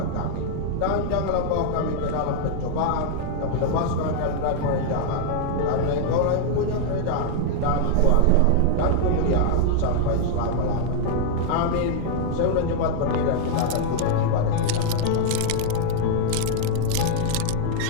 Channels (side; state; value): both; different; correlation -0.01